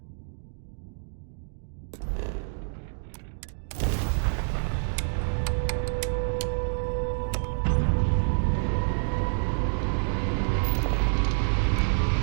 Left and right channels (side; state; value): left; silent; digital silence